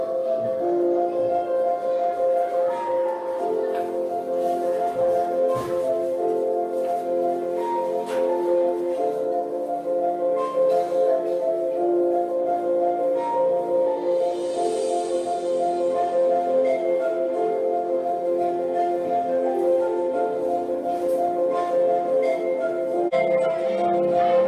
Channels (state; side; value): identical; both; correlation 1.00